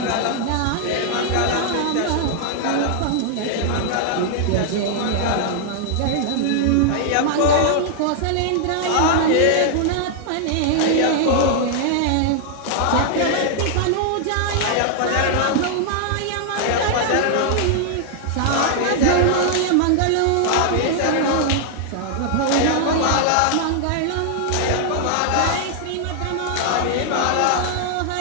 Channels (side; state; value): both; different; correlation -0.01